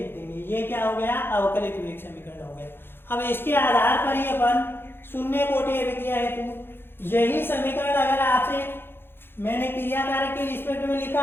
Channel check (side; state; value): right; late; 0.10 ms